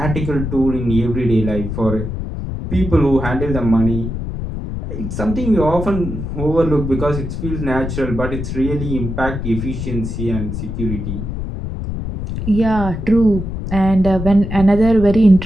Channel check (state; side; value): noise; left; rumble, 5 dB below the sound